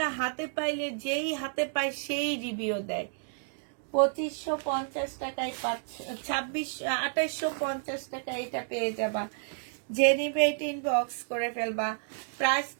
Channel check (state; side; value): silent; left; digital silence